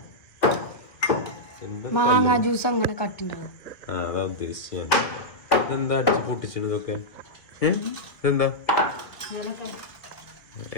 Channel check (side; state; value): right; late; 1.8 ms